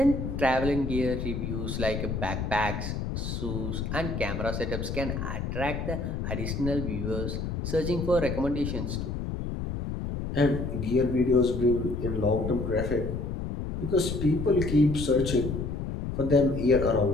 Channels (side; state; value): left; noise; rumble, 4 dB below the sound